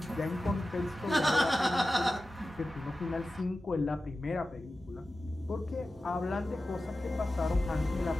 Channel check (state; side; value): normal; both; correlation 0.94